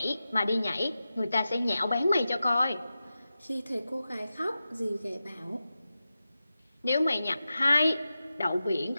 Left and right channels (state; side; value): inverted; both; correlation -0.93